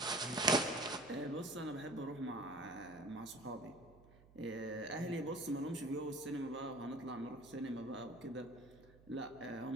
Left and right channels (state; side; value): noise; right; hum, 23 dB below the sound